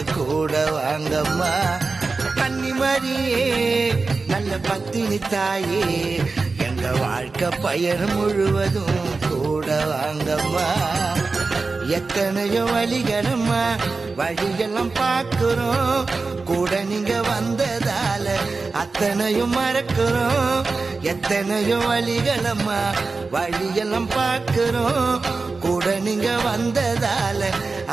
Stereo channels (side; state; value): left; quieter; 4.0 dB